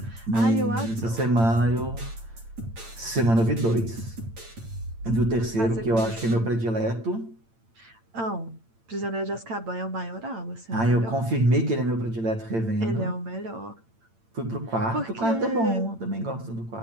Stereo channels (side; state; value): left; late; 8.8 ms